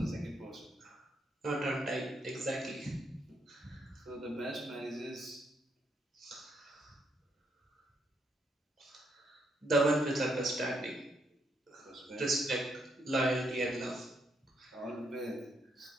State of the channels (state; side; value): normal; both; correlation 0.75